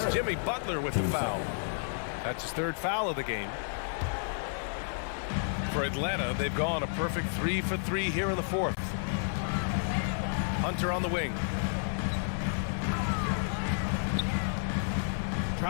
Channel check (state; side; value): silent; right; digital silence